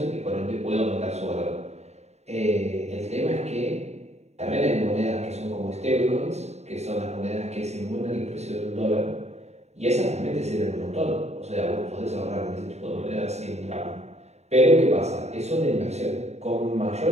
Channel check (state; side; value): late; left; 0.32 ms